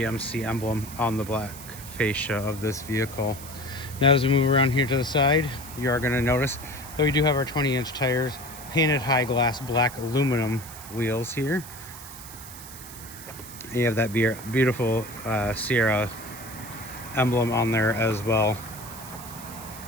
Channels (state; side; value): noise; right; hiss, 14 dB below the sound